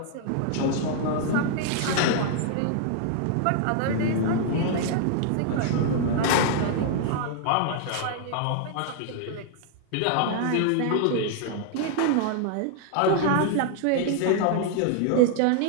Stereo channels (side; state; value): both; different; correlation 0.00